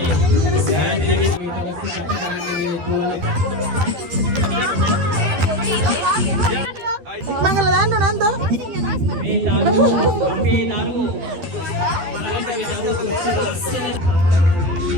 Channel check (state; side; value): late; left; 12 ms